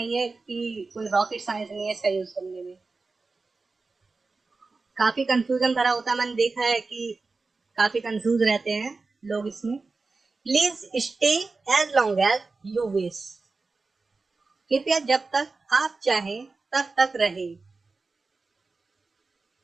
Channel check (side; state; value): left; quieter; 3.9 dB